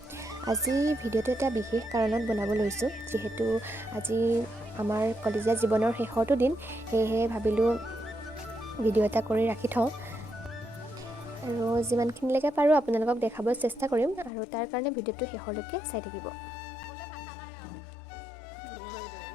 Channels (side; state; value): right; drops out; at 14.3 s